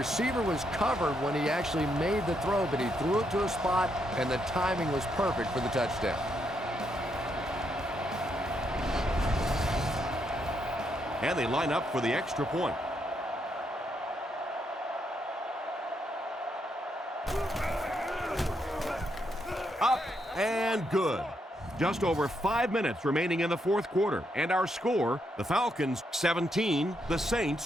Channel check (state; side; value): normal; both; correlation 0.78